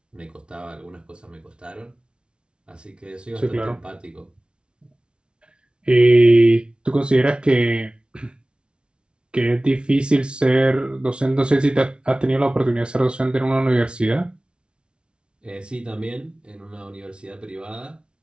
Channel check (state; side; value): late; left; 0.057 ms